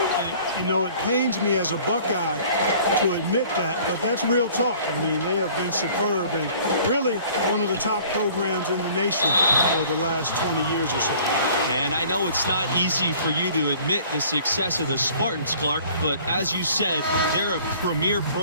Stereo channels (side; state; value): both; inverted; correlation -0.51